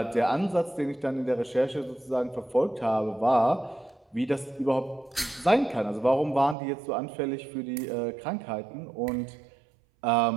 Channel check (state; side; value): drops out; left; at 6.6 s